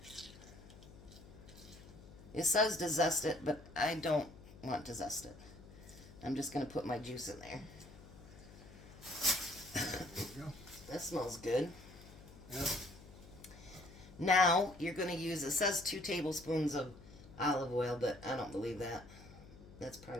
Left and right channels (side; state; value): left; noise; hum, 18 dB below the sound